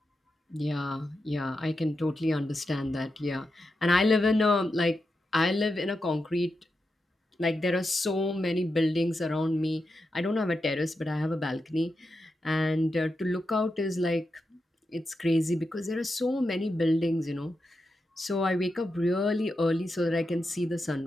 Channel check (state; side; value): normal; both; correlation 0.88